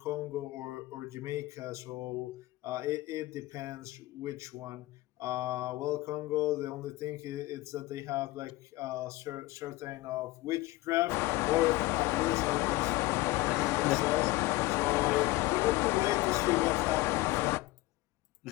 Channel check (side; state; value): right; quieter; 19.4 dB